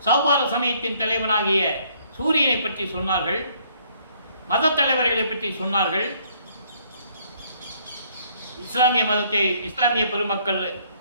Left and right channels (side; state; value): both; inverted; correlation -0.64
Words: சௌபார சமயத்தின் தலைவனாகிய சூரியனை பற்றி சொன்னார்கள். மத தலைவர்களை பற்றி சொன்னார்கள். இஸ்லாமிய பெருமக்கள்